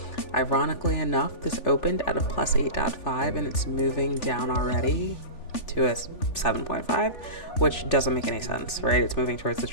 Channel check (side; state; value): right; late; 3.4 ms